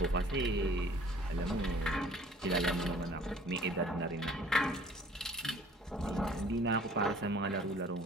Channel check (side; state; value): both; normal; correlation 0.52